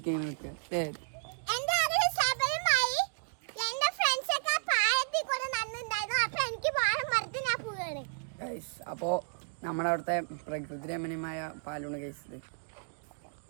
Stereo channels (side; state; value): left; silent; digital silence